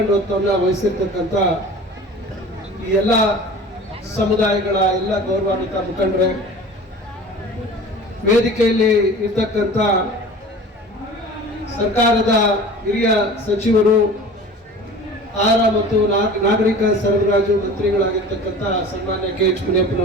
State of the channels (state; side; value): normal; both; correlation 0.40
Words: ವಹಿಸಿರ್ತಕ್ಕಂಥ ಈ ಎಲ್ಲ ಸಮುದಾಯಗಳ ಎಲ್ಲ ಗೌರವಾನ್ವಿತ ಮುಖಂಡರೇ, ವೇದಿಕೆಯಲ್ಲಿ ಇರ್ತಕ್ಕಂಥ ಸರ್ಕಾರದ ಹಿರಿಯ ಸಚಿವರು, ಆಹಾರ ಮತ್ತು ನಾಗರಿಕ ಸರಬರಾಜು ಮಂತ್ರಿಗಳಾಗಿರ್ತಕ್ಕಂಥ ಸನ್ಮಾನ್ಯ KH